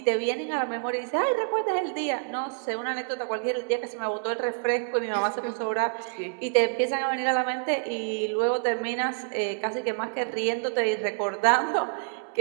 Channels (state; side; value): silent; left; 60 dB below the other